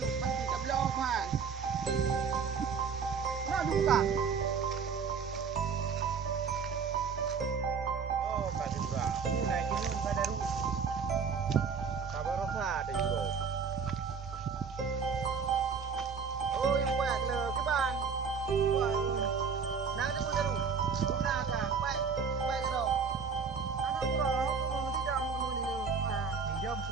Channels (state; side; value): quieter; left; 5.9 dB